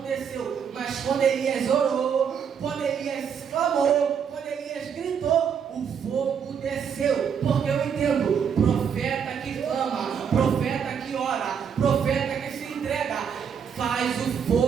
desceu. Mas quando Elias orou, quando Elias clamou, quando Elias gritou, o fogo desceu. Porque eu entendo: profeta que clama, profeta que ora, profeta que se entrega, faz o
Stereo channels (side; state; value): left; quieter; 7.3 dB